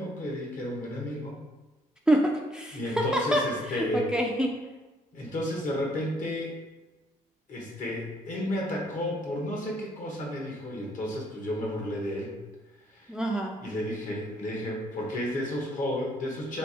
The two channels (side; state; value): both; normal; correlation 0.68